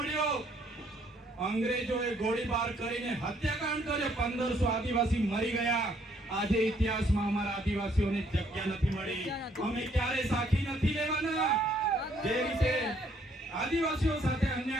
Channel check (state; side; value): normal; both; correlation 0.66